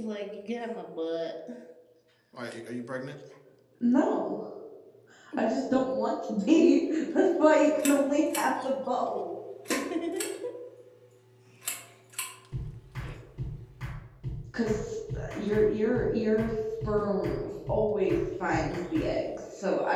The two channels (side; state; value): both; identical; correlation 1.00